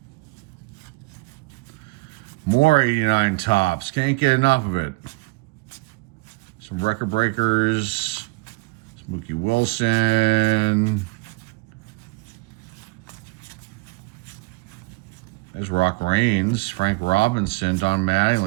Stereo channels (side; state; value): left; quieter; 25.3 dB